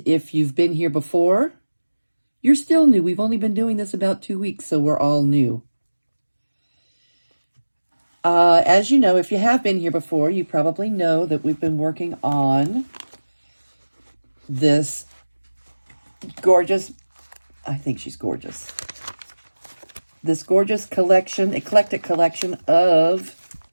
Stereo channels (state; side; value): inverted; both; correlation -1.00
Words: if you've been here before, you're still new. We've only been doing this about 2 weeks, so we're all new. As you know, if you have been here before, you probably know that we've been working on this gorgeous, I think she's gorgeous, this gorgeous collection, eclectic collection of